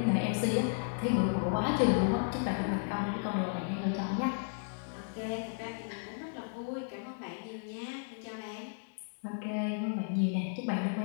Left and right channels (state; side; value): silent; right; digital silence